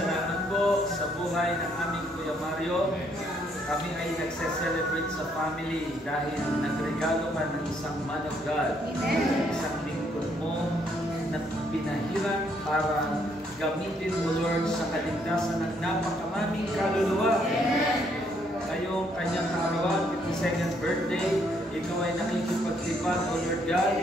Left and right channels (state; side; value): normal; both; correlation 0.70